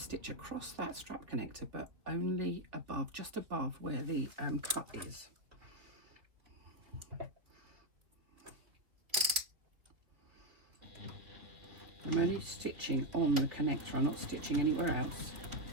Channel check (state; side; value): late; left; 2.9 ms